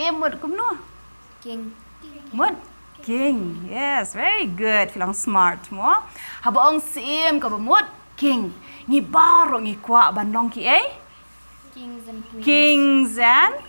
mut kum no King. mut king yes very good filang smart mo haba ong Syiem ka ba mut king ngi baro ngi kwa ban long ki ei Kings and queens. kings and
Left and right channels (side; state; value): both; inverted; correlation -1.00